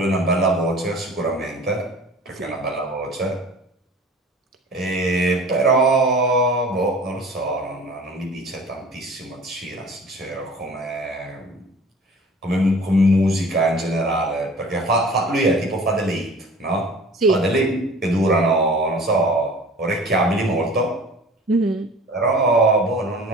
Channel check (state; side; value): normal; both; correlation 0.44